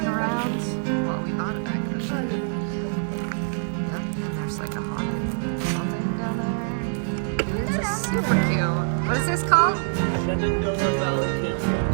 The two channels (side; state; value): left; silent; digital silence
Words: around. Well, we bought it back then. Yep, and there's like a haunted something down there. It's a super cute. What is this called? Shenandoah Valley